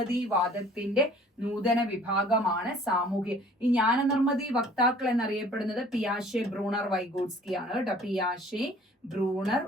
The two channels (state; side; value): normal; both; correlation 0.52